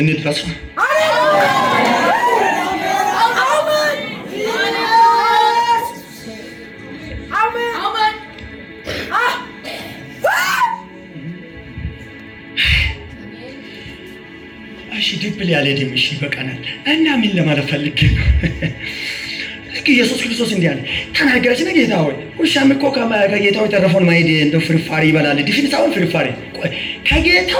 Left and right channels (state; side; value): identical; both; correlation 1.00